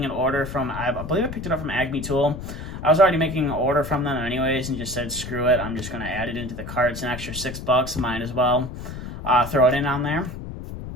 an order from, I believe I picked it up from Acme Tool. I was already making an order from them anyways, and just said, screw it, I'm just going to add it into the cart. It's an extra $6, might as well throw it in on there.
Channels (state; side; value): noise; left; rumble, 9 dB below the sound